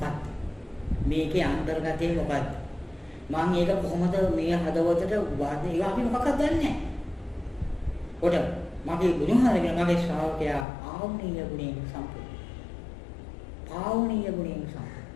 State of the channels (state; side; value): drops out; right; at 10.7 s